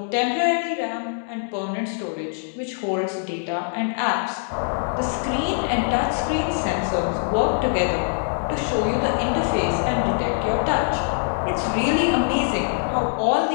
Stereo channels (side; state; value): right; silent; 63 dB below the other